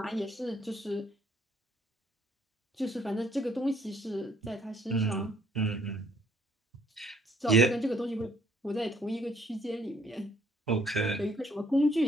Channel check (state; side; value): normal; both; correlation 0.64